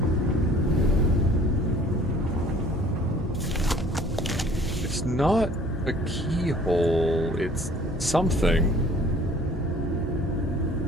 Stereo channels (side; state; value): both; normal; correlation 0.52